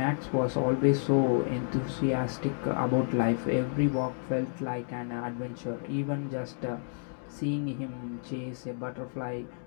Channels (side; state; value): right; silent; digital silence